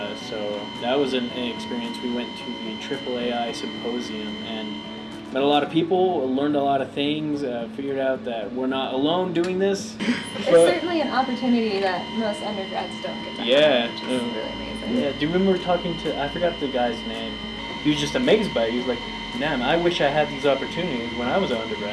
so that was an experience. We went to the AAAI symposium and met a lot of people, learned a lot of things, figured out that we're not alone doing this. It's certainly an opportunity that most undergrads don't get to have, which is really amazing. Yeah, do you remember talking to, I forgot the guy's name, he was just amazed by it. He was like, man, I wish I had these opportunities when I was an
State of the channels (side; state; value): both; identical; correlation 1.00